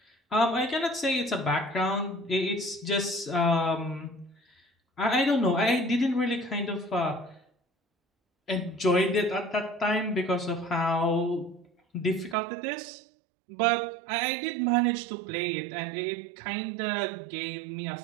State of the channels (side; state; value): left; drops out; at 12.4 s